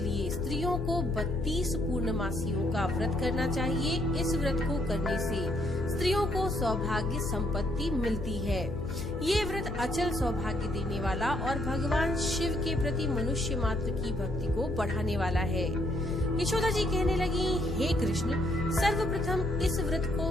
स्त्रियों को 32 पूर्णमासियों का व्रत करना चाहिए। इस व्रत को करने से स्त्रियों को सौभाग्य संपत्ति मिलती है। ये व्रत अचल सौभाग्य देने वाला और भगवान शिव के प्रति मनुष्य मात्र की भक्ति को बढ़ाने वाला है। यशोदा जी कहने लगी, हे कृष्ण, सर्वप्रथम इस व्रत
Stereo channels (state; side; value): noise; left; hum, 7 dB below the sound